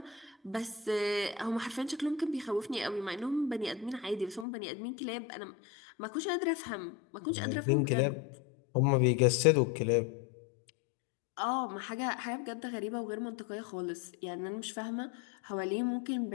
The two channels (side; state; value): right; drops out; at 4.5 s